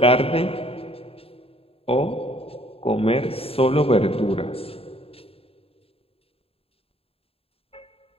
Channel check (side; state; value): right; late; 0.28 ms